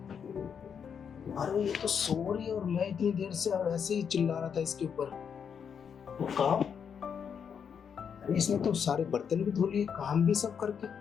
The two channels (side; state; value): right; quieter; 7.2 dB